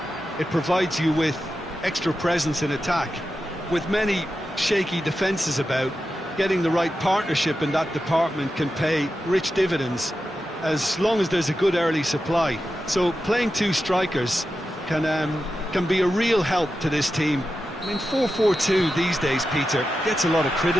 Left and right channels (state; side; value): normal; both; correlation 0.90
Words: it provides you with extra presence in attack. With many shaky defences about, getting the right partnership in that department can pay rich dividends as long as there's a good early supply. So playing two strikers can be a real help to this team. I mean, 4-4-2 these days, Peter, gets a lot of